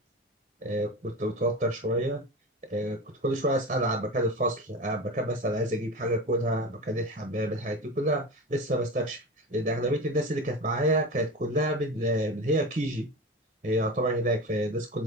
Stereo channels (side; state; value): both; normal; correlation 0.28